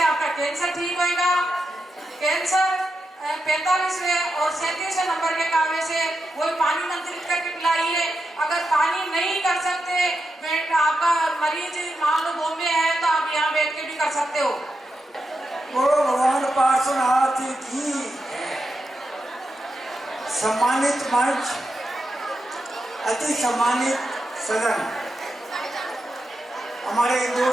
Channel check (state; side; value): normal; both; correlation 0.87